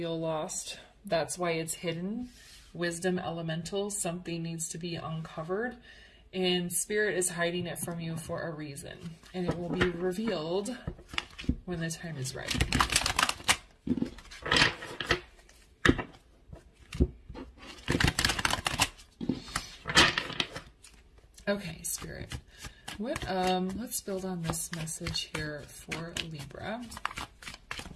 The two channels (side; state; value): both; identical; correlation 1.00